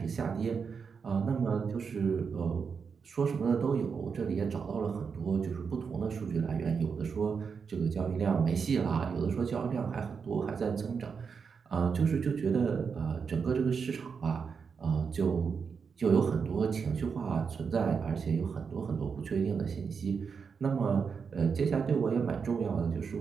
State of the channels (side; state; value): left; quieter; 5.9 dB